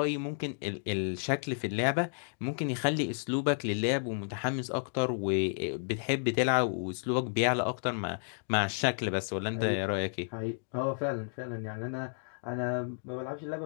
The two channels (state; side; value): silent; right; digital silence